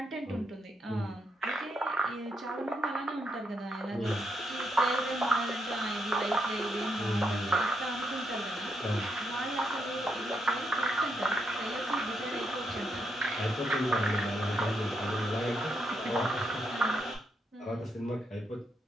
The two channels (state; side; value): normal; both; correlation 0.79